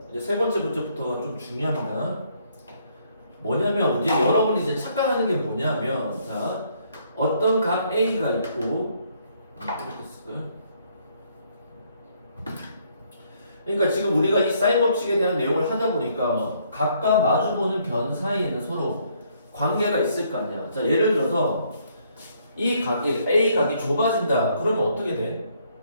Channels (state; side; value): inverted; both; correlation -0.68